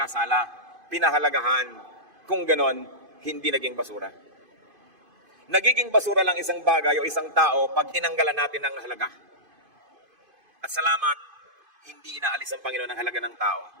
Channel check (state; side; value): late; left; 2.5 ms